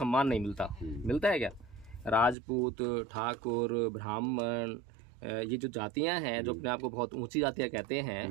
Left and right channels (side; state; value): left; drops out; at 2.4 s